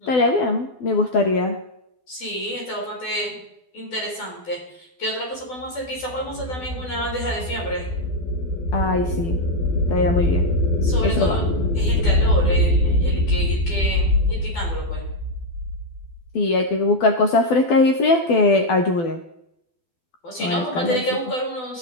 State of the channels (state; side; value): late; right; 12 ms